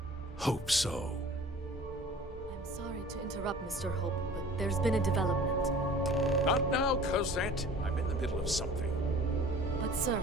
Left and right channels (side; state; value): both; normal; correlation 0.45